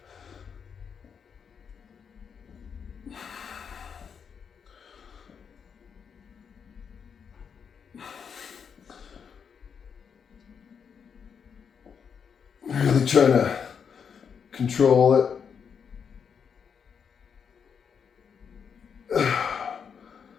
Really trying to control it.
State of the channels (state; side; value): quieter; right; 6.8 dB